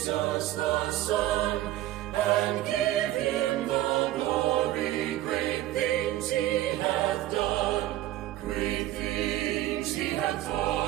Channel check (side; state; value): left; quieter; 14.7 dB